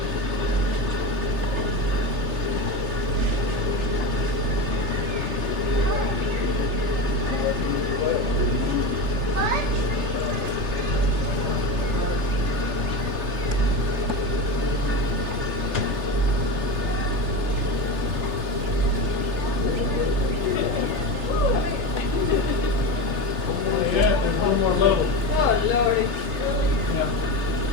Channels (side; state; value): left; late; 3.3 ms